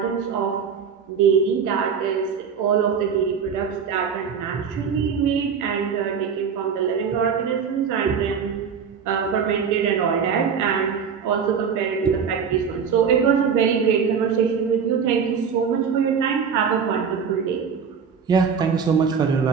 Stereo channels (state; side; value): quieter; left; 6.6 dB